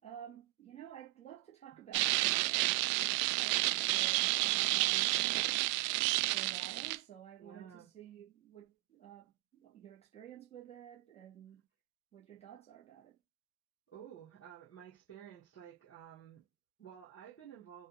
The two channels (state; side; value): quieter; left; 20.7 dB